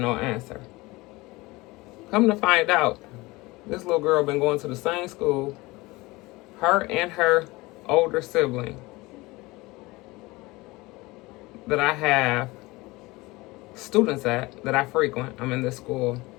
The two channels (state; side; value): quieter; right; 21.8 dB